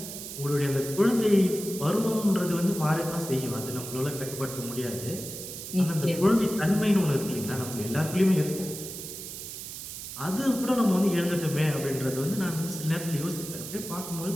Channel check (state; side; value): noise; right; hiss, 9 dB below the sound